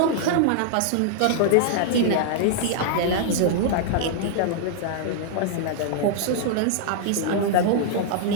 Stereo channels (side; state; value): both; different; correlation -0.01